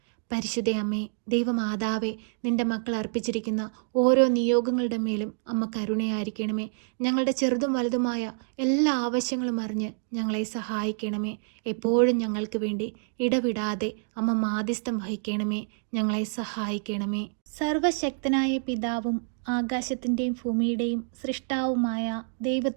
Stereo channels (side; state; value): left; silent; digital silence